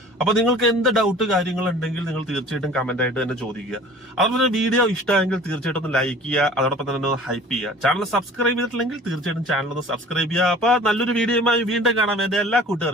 അപ്പൊ നിങ്ങൾക്ക് എന്ത് ഡൗട്ട് കാര്യങ്ങൾ ഉണ്ടെങ്കിൽ നിങ്ങൾ തീർച്ചയായിട്ടും കമന്റ് ആയിട്ട് തന്നെ ചോദിക്കുക. അതുപോലെ തന്നെ വീഡിയോ ഇഷ്ടമായെങ്കിൽ തീർച്ചയായിട്ടും ഒന്ന് ലൈക്ക് ചെയ്യുക, അതോടൊപ്പം തന്നെ ഒന്ന് ഹൈപ്പ് ചെയ്യുക. ചാനൽ സബ്സ്ക്രൈബ് ചെയ്തിട്ടില്ലെങ്കിൽ തീർച്ചയായിട്ടും ചാനൽ ഒന്ന് സബ്സ്ക്രൈബ് ചെയ്യുക. അപ്പൊ നല്ലൊരു വീഡിയോയുമായി വീണ്ടും കാണാം. എന്റെ എല്ലാ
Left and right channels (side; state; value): both; normal; correlation 0.46